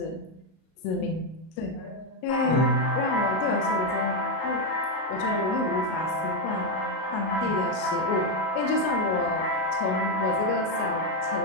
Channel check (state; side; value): late; right; 37 ms